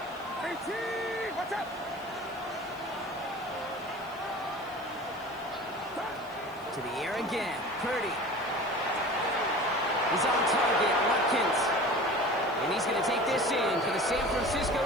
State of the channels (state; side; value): noise; right; hiss, 26 dB below the sound